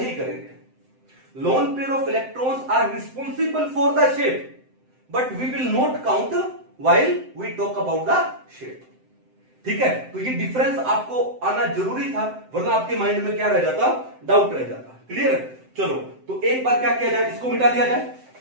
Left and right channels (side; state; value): left; late; 7.8 ms